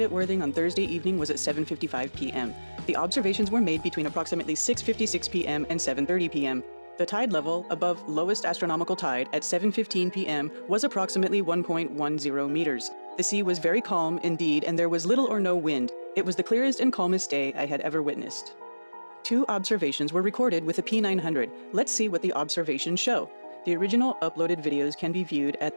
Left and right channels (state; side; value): inverted; both; correlation -1.00